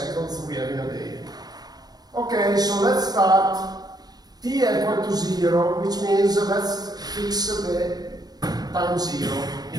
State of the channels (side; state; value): left; late; 0.19 ms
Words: we have in a day. Okay, so let's start. T equal to 0, which means let's fix the time 0,